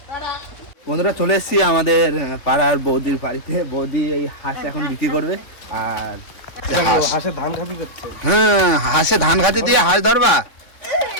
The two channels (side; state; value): right; late; 3.5 ms